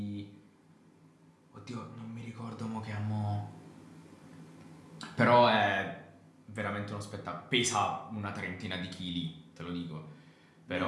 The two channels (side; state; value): both; identical; correlation 1.00